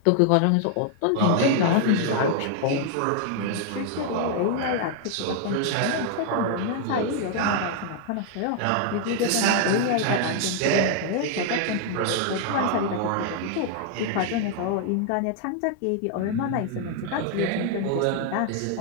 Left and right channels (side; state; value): both; different; correlation 0.00